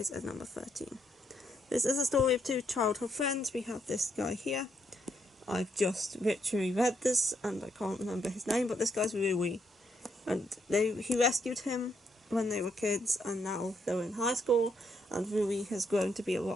at number 13. This is a story of two childhood friends. We have this guy here. I've just literally read this and I can't remember his name, but this guy's Rui. And he rescued him when they were kids, and now they're in high school, and Rui has grown to be a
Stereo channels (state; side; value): normal; both; correlation 0.76